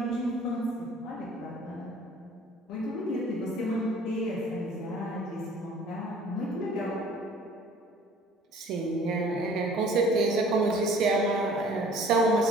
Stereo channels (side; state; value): both; normal; correlation 0.51